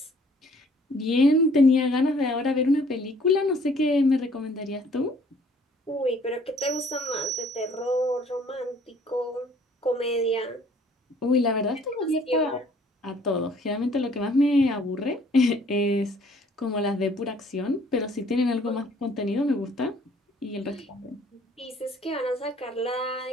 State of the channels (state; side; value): normal; both; correlation 0.58